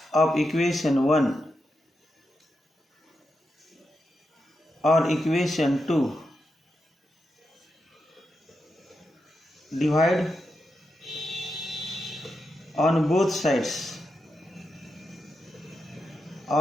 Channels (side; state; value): both; normal; correlation 0.86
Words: of equation 1 or equation 2. Divide on both sides